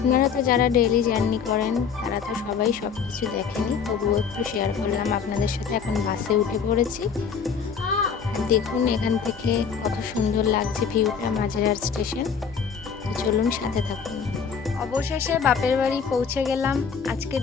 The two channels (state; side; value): quieter; right; 6.5 dB